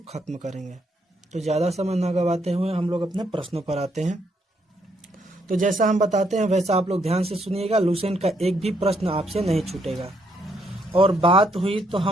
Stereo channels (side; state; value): both; normal; correlation 0.73